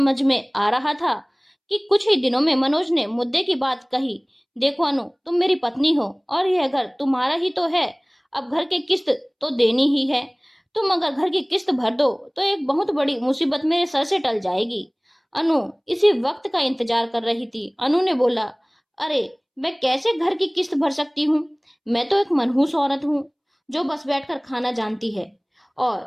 में आ रहा था कि कुछ ही दिनों में मनोज ने मुद्दे की बात कही। देखो अनु, तुम मेरी पत्नी हो और यह घर तुम्हारा ही तो है। अब घर की किस्त तो देनी ही है। तुम अगर घर की किस्त भर दो तो एक बहुत बड़ी मुसीबत मेरे सर से टल जाएगी। अनु इसी वक्त का इंतजार कर रही थी। अनु ने बोला, अरे मैं कैसे घर की किस्त भर सकती हूँ? मैं तो एक मनहूस औरत हूँ जो बस बैठकर खाना जानती है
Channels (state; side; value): identical; both; correlation 1.00